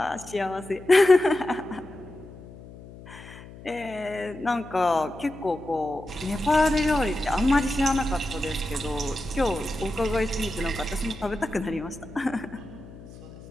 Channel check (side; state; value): left; noise; hum, 17 dB below the sound